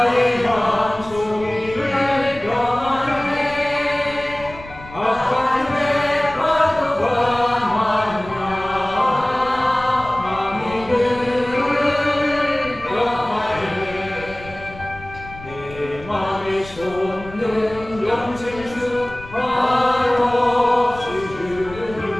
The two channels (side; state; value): left; noise; rumble, 17 dB below the sound